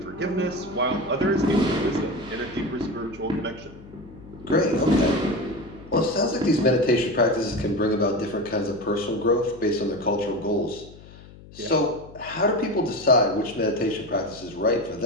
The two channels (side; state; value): left; noise; hum, 20 dB below the sound